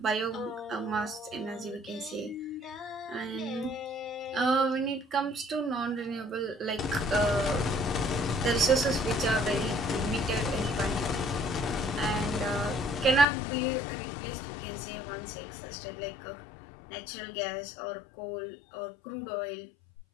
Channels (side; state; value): right; drops out; at 13.2 s